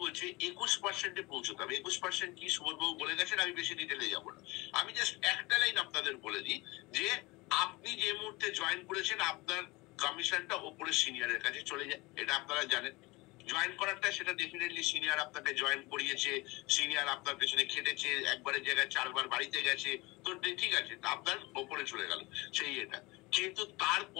বলছে 21%-এ পৌঁছতে হবে। 21% কি সুবোধবাবু বলে গেছেন, আমি বেশি ডিটেলে যাবো না। আমি জাস্ট একটা লাইন আপনাদের বলে দিই যে আপনি যে মুহূর্তে জয়েন করেছেন আপনার কমিশনটা ওপরে সিনিয়রের কাছে চলে যায়, এটা আপনারা জানেন। জয়েন করারটা সেটা ডেফিনেটলি সিনিয়র আপনাকে জয়েন করিয়েছে, সিনিয়র আপনার পেছনে খেটেছে, একবারের জায়গায় 4 বার বাড়িতে গেছে, তো ঠিক আছে, আপনার ওপরে চলে গেল সেই এটা। কিন্তু তার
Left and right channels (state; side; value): quieter; right; 23.3 dB